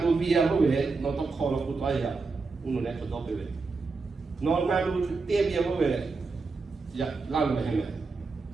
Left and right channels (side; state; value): left; quieter; 4.2 dB